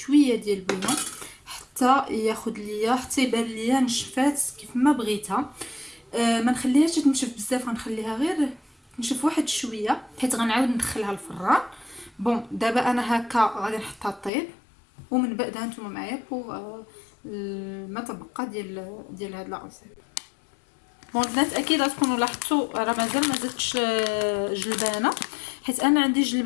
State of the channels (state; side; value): drops out; right; at 14.3 s